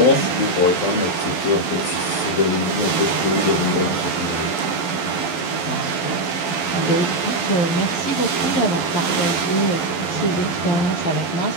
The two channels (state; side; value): late; right; 12 ms